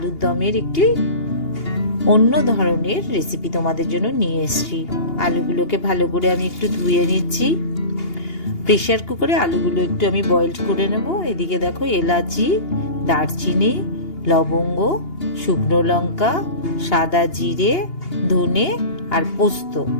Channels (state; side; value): late; right; 2.8 ms